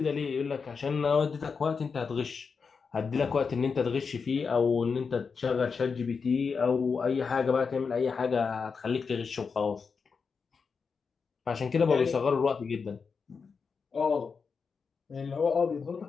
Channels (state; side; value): quieter; right; 5.4 dB